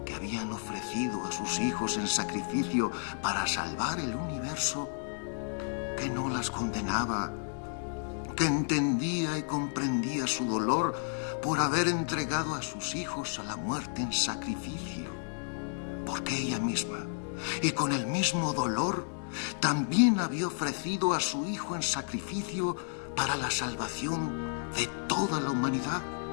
que habían ofrecido a sus hijos en sacrificio para salvar el universo, que no las condenaba, que entendía y comprendía su dolor por haber entregado a sus hijos a la muerte en sacrificio, porque ella misma, y con el mismo dolor, también había ofrecido a su hijo en sacrificio para la salvación de toda la humanidad.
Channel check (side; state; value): right; silent; 57 dB below the other